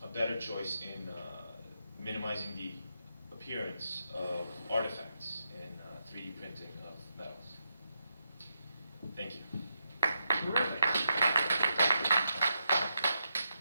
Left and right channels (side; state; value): both; inverted; correlation -0.85